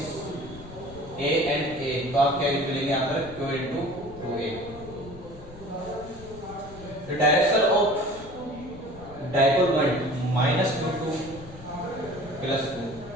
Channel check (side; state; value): left; noise; rumble, 17 dB below the sound